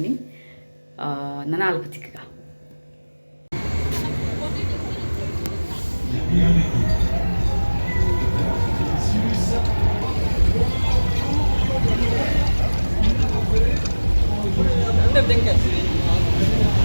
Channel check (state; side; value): inverted; both; correlation -1.00